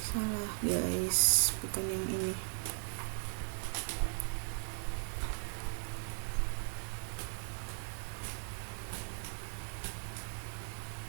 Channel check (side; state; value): left; silent; 53 dB below the other